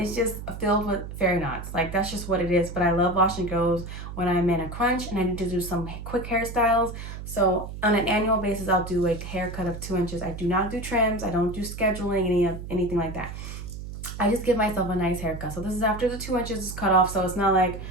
just filled with fairy knots. Like that's just what it is. But I love wash and goes when I'm in a crunch and I need to do some quick hairstyles. So on an annual basis, I'll do a haircut of 2 inches. I do not do trims. I don't do scheduling, anything like that. I just give myself a nice haircut. So this is after the 2 inches is cut off. So it's not like,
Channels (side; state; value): right; noise; hum, 9 dB below the sound